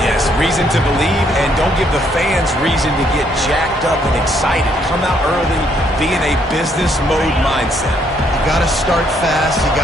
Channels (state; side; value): normal; both; correlation 0.70